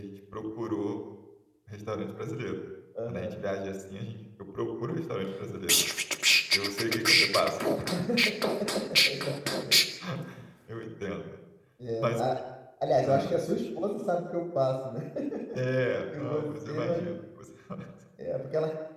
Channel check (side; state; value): both; identical; correlation 1.00